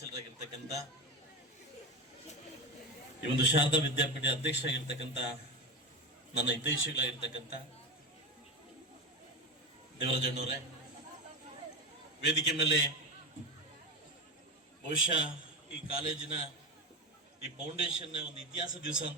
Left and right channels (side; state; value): both; normal; correlation 0.20